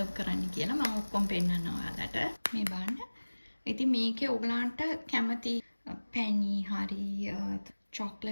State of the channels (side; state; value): both; inverted; correlation -1.00